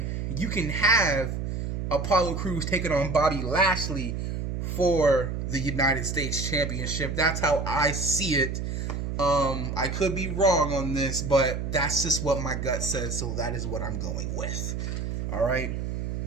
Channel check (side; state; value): right; noise; hum, 3 dB below the sound